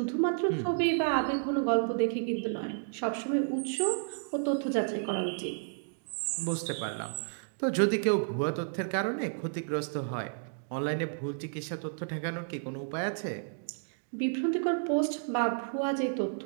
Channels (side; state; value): left; silent; digital silence